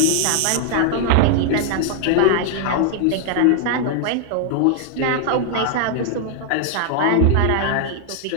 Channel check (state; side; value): different; both; correlation 0.00